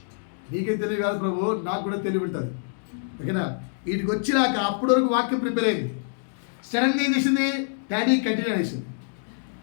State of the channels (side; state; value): right; silent; digital silence